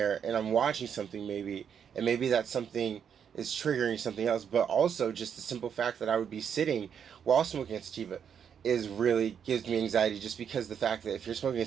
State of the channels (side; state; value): left; quieter; 7.8 dB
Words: and I'm watching something maybe, and maybe that something is triggering something else, but also just the simple fact that I would be sitting while smoking a sativa is really gives me anxiety, just because the fact that if you're smoking a